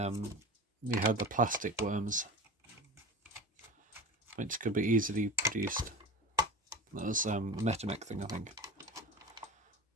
we have the plastic worms, which could be easily produced. That was a Metamec thing, I think.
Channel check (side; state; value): both; normal; correlation 0.32